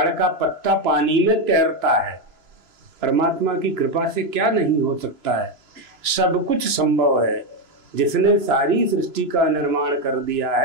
का पत्ता पानी में तैरता है। परमात्मा की कृपा से क्या नहीं हो सकता है? सब कुछ संभव है। जिसने सारी सृष्टि का निर्माण कर दिया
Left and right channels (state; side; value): late; left; 2.9 ms